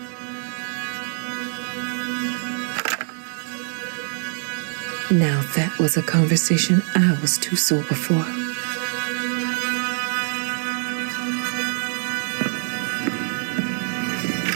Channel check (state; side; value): silent; left; digital silence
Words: Now that was a conversation I was too sober for.